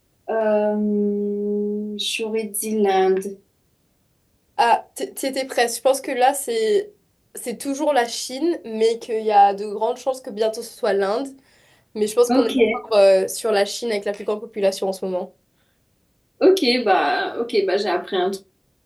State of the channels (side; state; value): both; identical; correlation 1.00